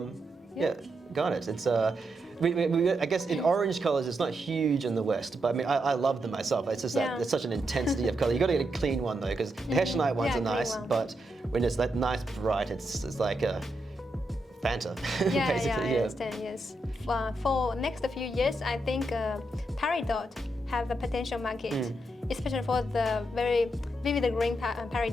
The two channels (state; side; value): normal; both; correlation 0.83